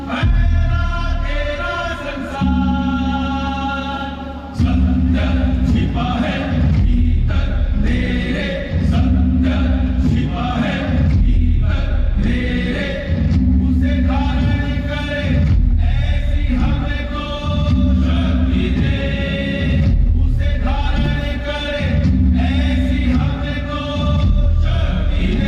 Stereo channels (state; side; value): identical; both; correlation 1.00